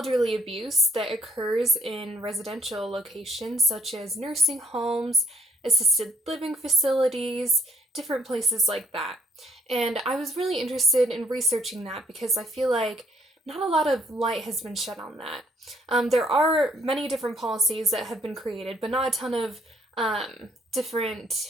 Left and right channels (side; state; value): both; normal; correlation 0.65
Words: abuse that occurs in residential locations such as nursing homes, assisted living facilities, different places like that. And I was really interested in researching that because I feel like not a lot of light has been shed on that. There are many different policies that have been created, but not a ton of